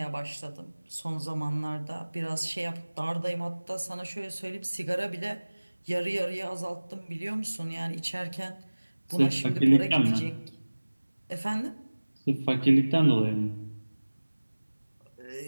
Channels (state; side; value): inverted; both; correlation -1.00